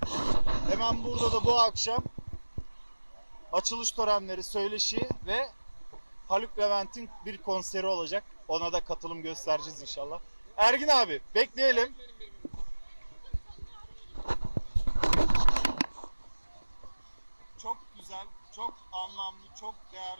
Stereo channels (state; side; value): inverted; both; correlation -1.00